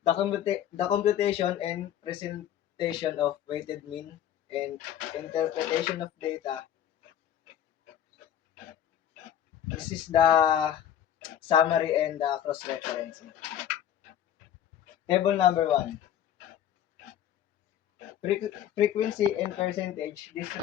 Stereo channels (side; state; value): right; quieter; 10.5 dB